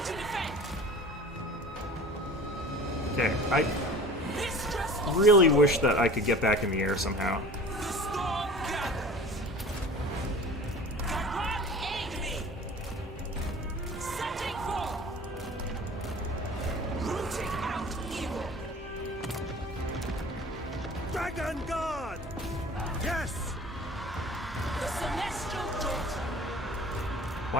to defend! Okay, I Mistress of really wish that I could get back in the air somehow. the storm gathers! Gyrod, aid me! Setting forth! Rooting out evil! Dragon Guard! Yes! The Celestial Daughter!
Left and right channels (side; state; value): both; normal; correlation 0.42